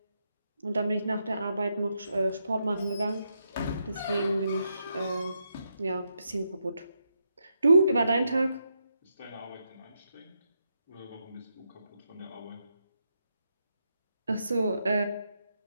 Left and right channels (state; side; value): inverted; both; correlation -0.82